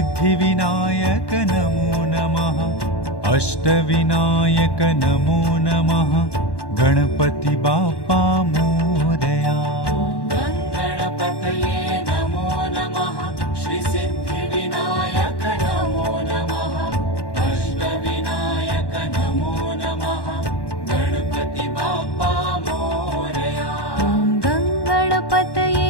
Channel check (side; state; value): right; late; 1.1 ms